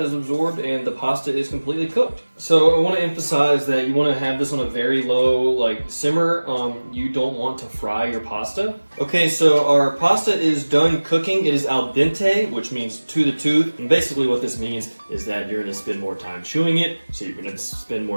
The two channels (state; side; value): inverted; both; correlation -1.00